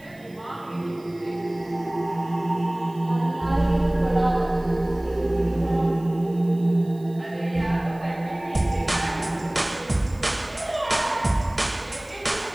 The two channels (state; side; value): noise; right; hiss, 28 dB below the sound